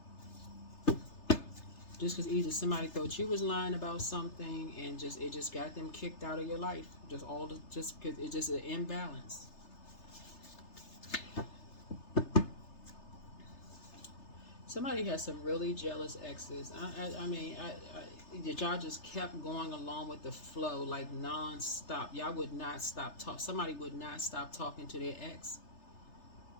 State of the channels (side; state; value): right; late; 3.3 ms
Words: Just because either somebody thought you was lying about something and just it just got them kicked out of your life. Just because it's just an imbalance. Somebody has some really jealous exes. I mean, y'all just kept going along with the flow like non-stop. Y'all would not stop talk. Somebody would not stop talking to their ex.